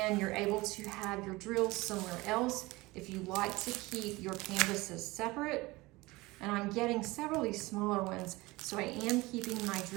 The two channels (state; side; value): quieter; left; 21.5 dB